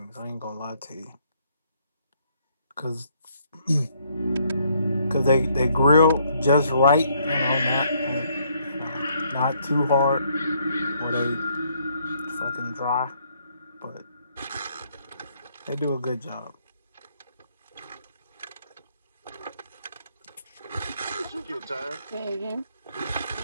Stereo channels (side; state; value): both; inverted; correlation -0.69